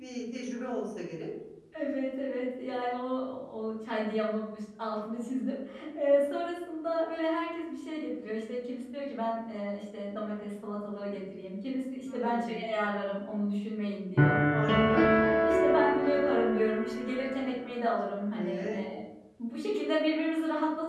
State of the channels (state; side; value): identical; both; correlation 1.00